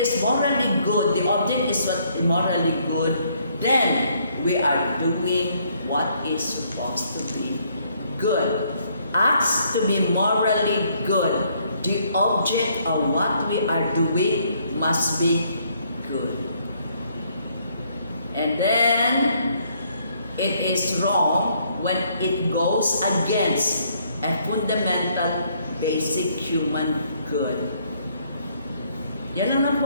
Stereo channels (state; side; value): inverted; both; correlation -0.68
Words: is morally good, the object is what morally good, then we are doing what is supposed to be good. Acts to be morally good. The object of what we are doing must be good. And then, it is wrong when it goes against a fundamental, basic human good. Yan lang